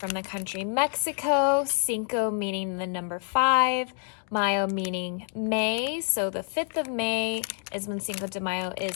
the country Mexico. Cinco meaning the number 5, Mayo meaning May. So the 5th of May is when Cinco de Mayo is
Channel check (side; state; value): right; silent; 56 dB below the other